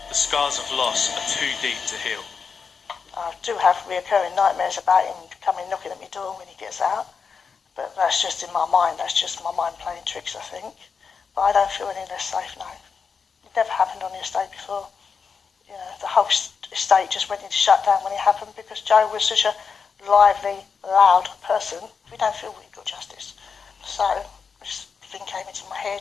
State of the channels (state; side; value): quieter; right; 5.7 dB